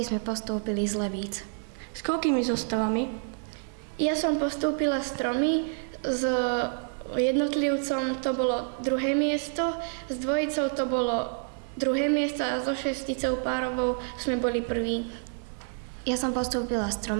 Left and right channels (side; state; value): left; silent; 59 dB below the other